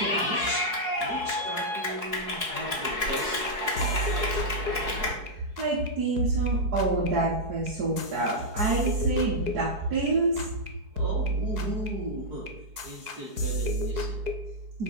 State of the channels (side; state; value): left; late; 4.7 ms